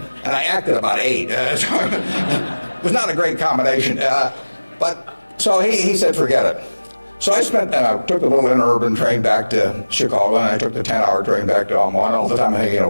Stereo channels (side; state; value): both; inverted; correlation -1.00